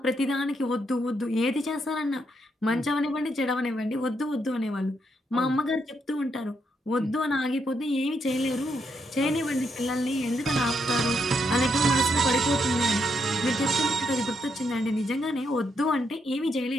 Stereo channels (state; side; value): normal; both; correlation 0.78